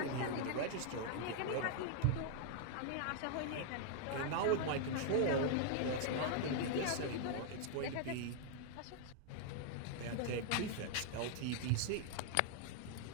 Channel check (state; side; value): different; both; correlation 0.00